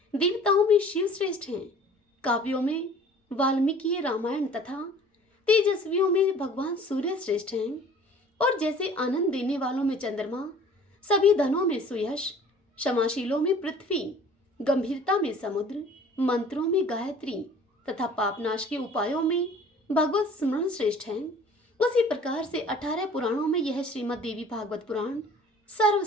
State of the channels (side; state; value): both; normal; correlation 0.49